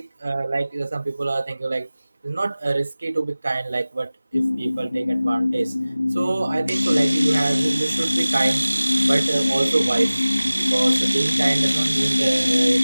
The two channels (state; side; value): inverted; both; correlation -0.97